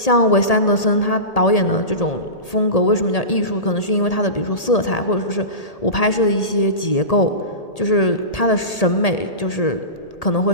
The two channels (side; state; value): right; late; 1.8 ms